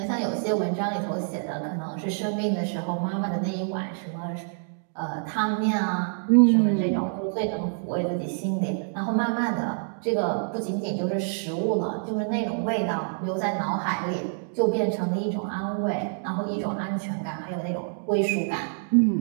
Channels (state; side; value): silent; left; digital silence